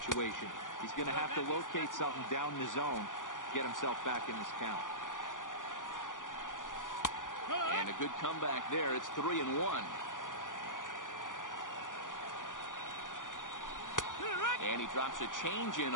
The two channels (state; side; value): late; right; 0.88 ms